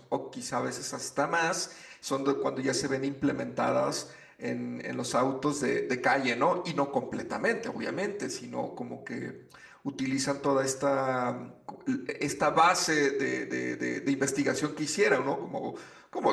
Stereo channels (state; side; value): identical; both; correlation 1.00